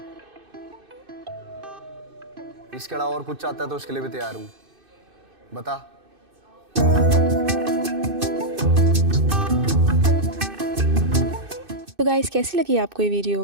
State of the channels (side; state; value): left; late; 2.6 ms